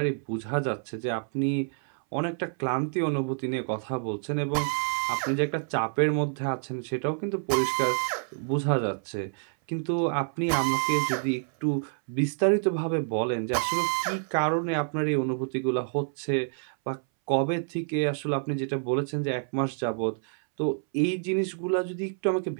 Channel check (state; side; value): silent; left; 59 dB below the other